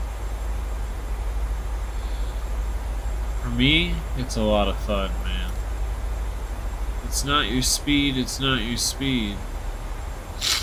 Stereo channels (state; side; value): identical; both; correlation 1.00